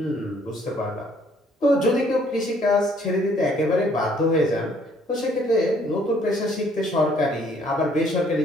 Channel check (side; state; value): both; normal; correlation 0.63